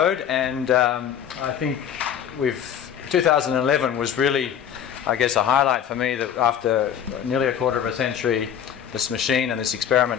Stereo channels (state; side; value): quieter; right; 9.1 dB